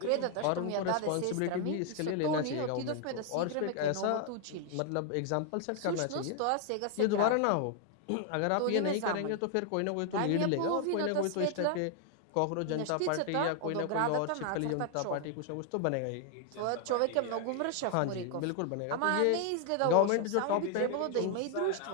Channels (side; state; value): both; different; correlation 0.00